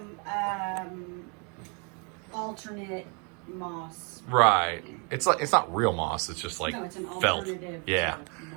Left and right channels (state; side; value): quieter; left; 35.2 dB